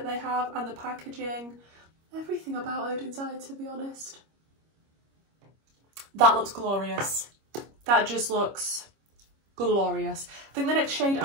they have and the packaging, everything about Oden's Eye, to be honest. That looks glorious. That just looks glorious. I think the next shade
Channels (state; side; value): late; left; 25 ms